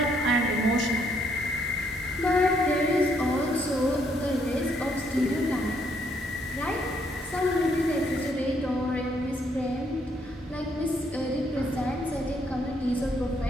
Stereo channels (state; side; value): normal; both; correlation 0.71